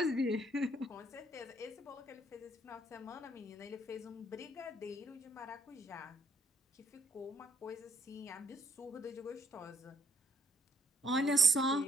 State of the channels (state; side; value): normal; both; correlation 0.67